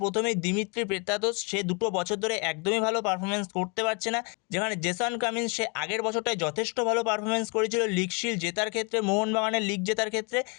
প্রথমেই দিমিত্রি পেত্রাতোস, সে 2 বছর ধরে একদমই ভালো পারফরমেন্স করতে পারছে না। যেখানে জেসন কামিন্স, সে আগের বছরটায় যথেষ্ট ভালো পারফরমেন্স করেছিল লিগ শিল্ড জেতার ক্ষেত্রে, মোহনবাগানের লিগ জেতার ক্ষেত্রে,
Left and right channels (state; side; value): quieter; right; 34.1 dB